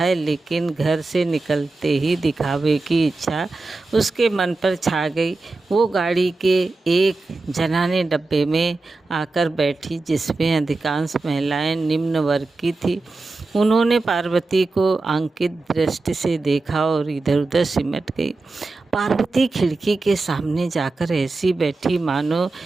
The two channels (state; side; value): quieter; left; 3.4 dB